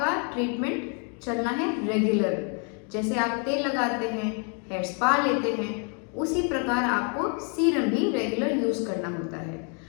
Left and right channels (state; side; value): quieter; right; 39.7 dB